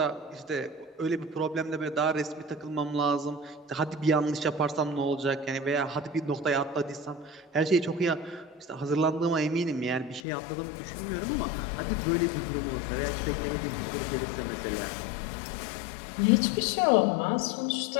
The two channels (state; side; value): drops out; right; at 10.2 s